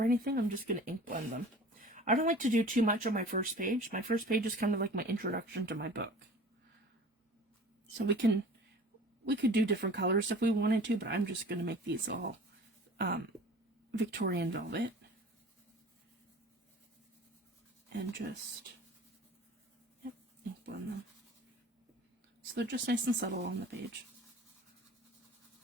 anything. I'm just going to ink blend them. I don't like to do too much on my first page. My first page is kind of like my introduction to my book. So we could do different colors if we wanted to, but I'm just going to make these all Victorian Velvet. And just, yep, ink blend them. So they're just nice and subtle on the page.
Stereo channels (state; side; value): normal; both; correlation 0.42